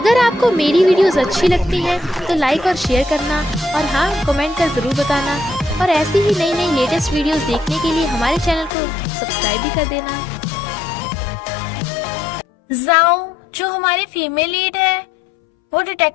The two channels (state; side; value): drops out; right; at 8.7 s